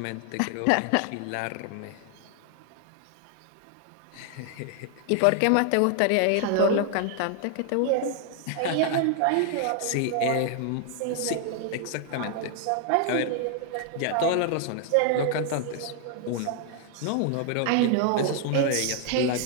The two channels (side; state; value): both; different; correlation 0.00